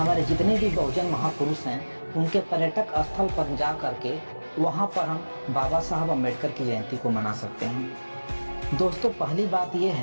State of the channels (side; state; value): both; inverted; correlation -1.00